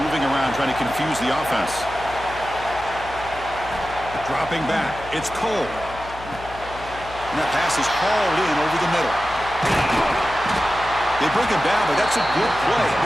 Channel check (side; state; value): left; noise; hum, 15 dB below the sound